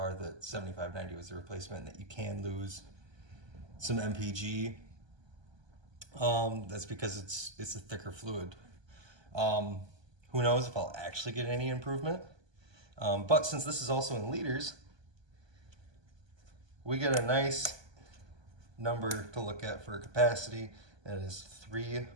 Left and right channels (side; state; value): left; late; 1.2 ms